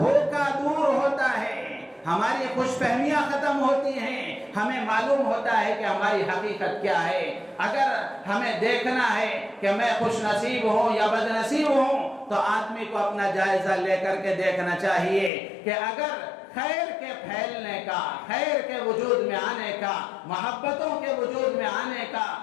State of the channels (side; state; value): right; drops out; at 15.3 s